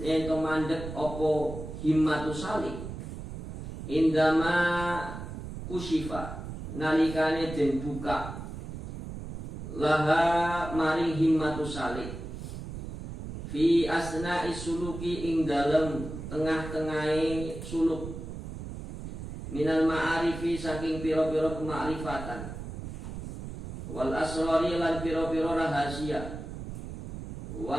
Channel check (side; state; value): right; noise; rumble, 8 dB below the sound